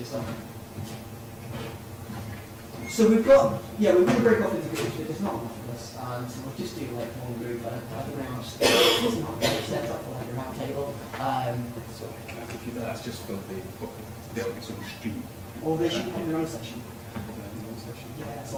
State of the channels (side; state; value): both; identical; correlation 1.00